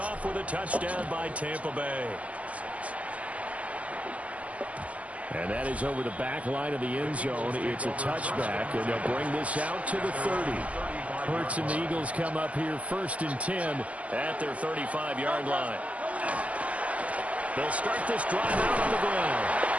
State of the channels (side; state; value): left; late; 0.065 ms